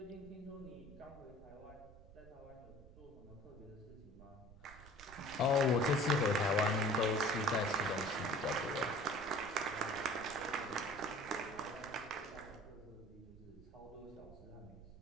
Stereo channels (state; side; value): noise; right; rumble, 19 dB below the sound